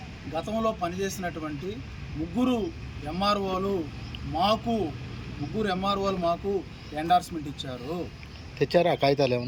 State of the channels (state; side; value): identical; both; correlation 1.00